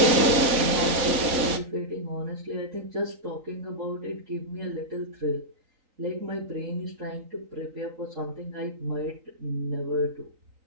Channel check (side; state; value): left; late; 4.1 ms